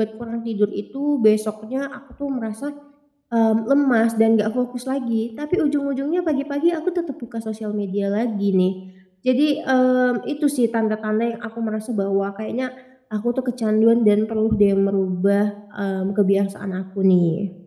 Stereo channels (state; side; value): identical; both; correlation 1.00